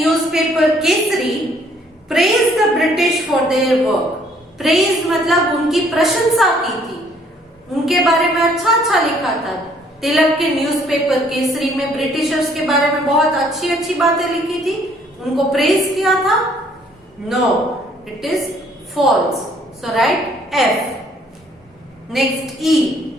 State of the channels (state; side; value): normal; both; correlation 0.62